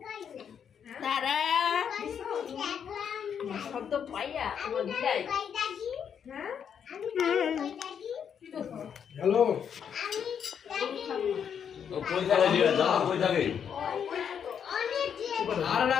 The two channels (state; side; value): quieter; right; 7.9 dB